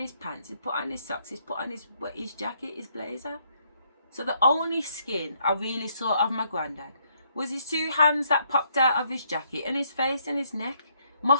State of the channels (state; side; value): inverted; both; correlation -0.72